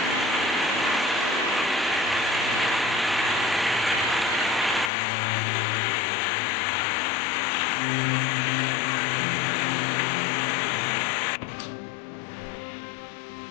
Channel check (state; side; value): drops out; right; at 4.9 s